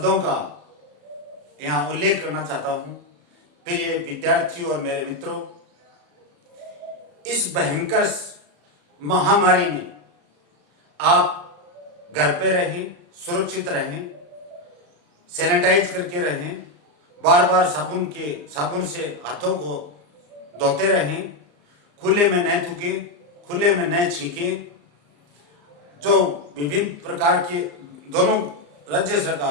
का यहां उल्लेख करना चाहता हूं। प्रिय विद्यार्थियों और मेरे मित्रों, इस भयंकर महामारी में आप घर पे रहें, सुरक्षित रहें, सैनिटाइज करके रहें, बार बार साबुन से हाथों को धोते रहें, खुले में न थूकें, खुले में न छींकें। जो विभिन्न प्रकार के दोनों राज्य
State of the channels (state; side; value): late; left; 34 ms